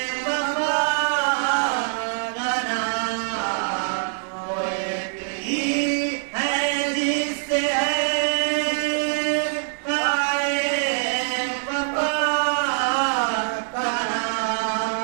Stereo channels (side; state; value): left; silent; 56 dB below the other